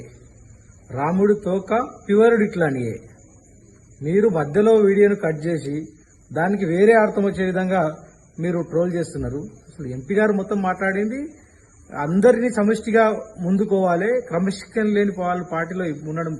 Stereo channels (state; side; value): identical; both; correlation 1.00